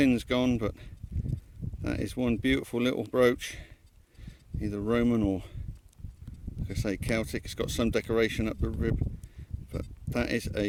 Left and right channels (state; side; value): identical; both; correlation 1.00